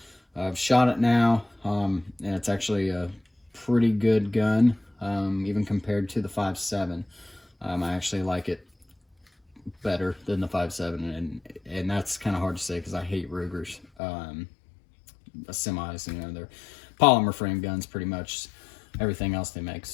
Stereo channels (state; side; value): drops out; right; at 13.9 s